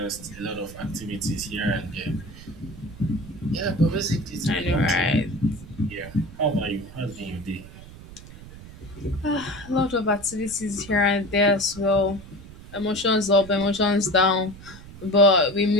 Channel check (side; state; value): right; noise; rumble, 17 dB below the sound